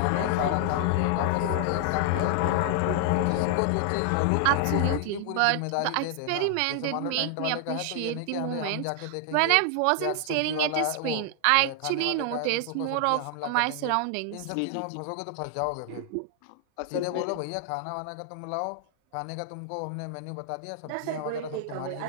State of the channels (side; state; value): both; different; correlation 0.00